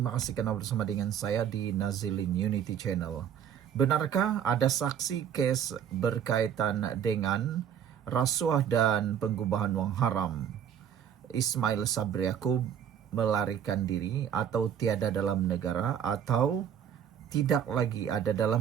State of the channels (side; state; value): left; quieter; 8.9 dB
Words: kasih kerana bersama dengan saya di Nazilin Unity Channel. Benarkah ada saksi kes berkaitan dengan rasuah dan pengubahan wang haram Ismail Sabri Yaakob melarikan diri atau tiada dalam negara atau tidak lagi ada